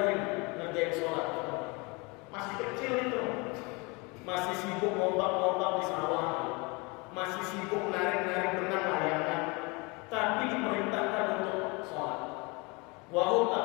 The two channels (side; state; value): right; quieter; 28.1 dB